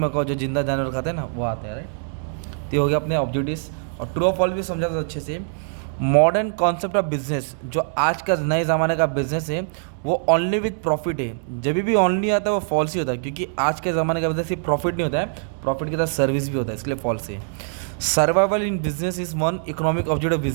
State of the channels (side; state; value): left; silent; digital silence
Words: जो जिंदा जानवर खाते हैं ना, वो आते हैं, राइट। तो ये हो गया अपने ऑब्जेक्टिव्स। और ट्रू ऑफ फॉल्स भी समझा था अच्छे से। मॉडर्न कॉन्सेप्ट ऑफ बिजनेस, जो आज का नए ज़माने का बिजनेस है, वो ओनली विथ प्रॉफिट है। जब भी ओनली आता है वो फॉल्स ही होता है, क्योंकि आज के ज़माने का बिजनेस सिर्फ प्रॉफिट नहीं होता है, प्रॉफिट के साथ सर्विस भी होता है, इसलिए फॉल्स है। Survival in business is one economic objective